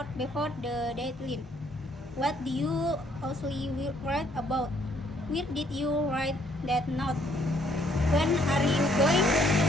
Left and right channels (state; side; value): normal; both; correlation 0.66